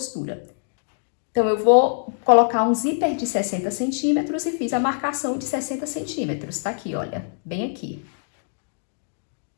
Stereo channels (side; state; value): right; silent; digital silence